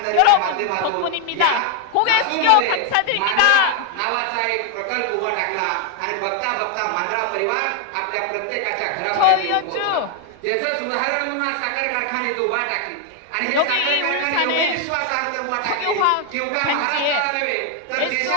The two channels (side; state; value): both; different; correlation 0.00